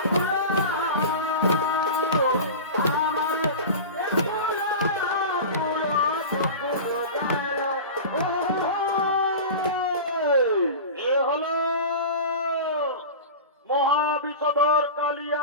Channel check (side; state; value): both; inverted; correlation -0.30